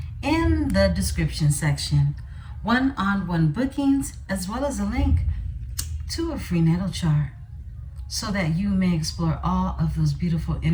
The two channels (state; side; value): identical; both; correlation 1.00